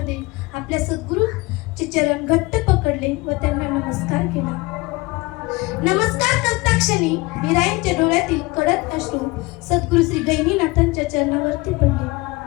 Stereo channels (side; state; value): right; quieter; 23.1 dB